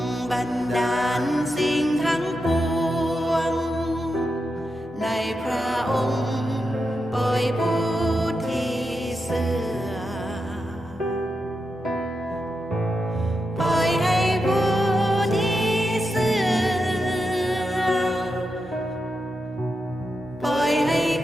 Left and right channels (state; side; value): normal; both; correlation 0.87